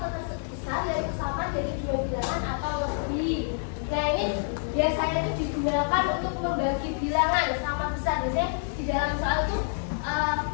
terbesar dari kesamaan dari dua bilangan atau lebih. Nah ini biasanya itu digunakan untuk membagi bilangan sama besar. Biasanya di dalam soal itu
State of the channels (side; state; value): right; silent; digital silence